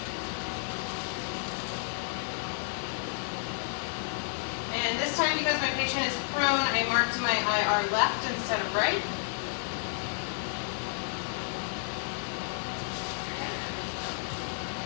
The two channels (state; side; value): silent; right; 57 dB below the other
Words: And this time, because my patient is prone, I marked my IR left instead of right. Okay.